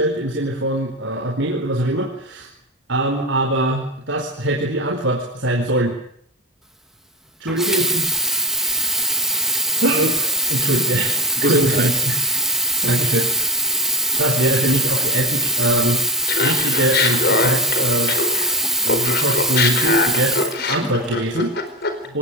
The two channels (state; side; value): normal; both; correlation 0.10